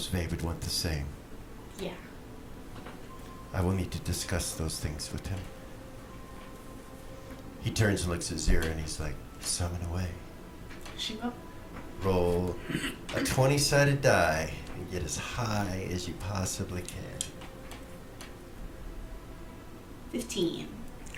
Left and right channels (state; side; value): identical; both; correlation 1.00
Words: Vay would want the same. Yeah. I will need to discuss those things with him. He turns and looks at Zira and he's like, "Summon away. She will. Roll a 20-sided die and get as high as you possibly can." 15.